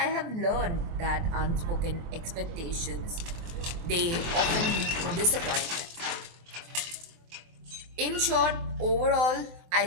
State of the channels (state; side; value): late; left; 24 ms